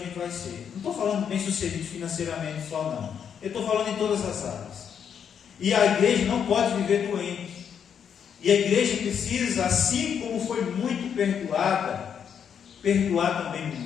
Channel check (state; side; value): quieter; right; 7.8 dB